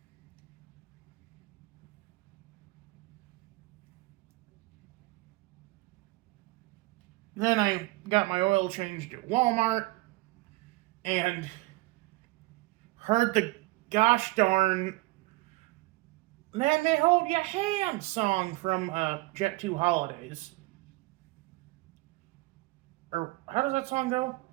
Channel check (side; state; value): left; quieter; 21.9 dB